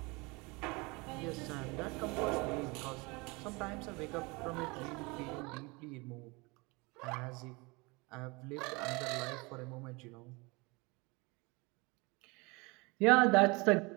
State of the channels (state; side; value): quieter; left; 26.4 dB